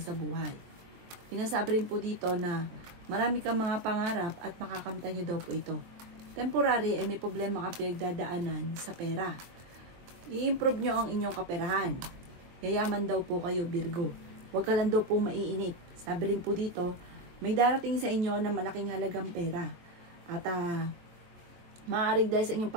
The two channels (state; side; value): late; left; 22 ms